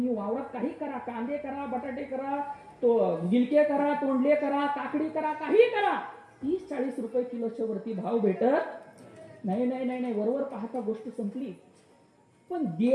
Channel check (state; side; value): identical; both; correlation 1.00